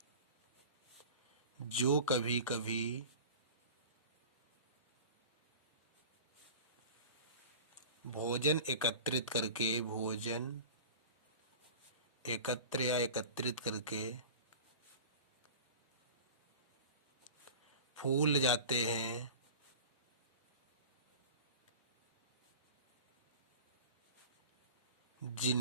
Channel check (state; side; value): inverted; both; correlation -0.37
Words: जो कभी कभी भोजन एकत्रित करके फूल जाते हैं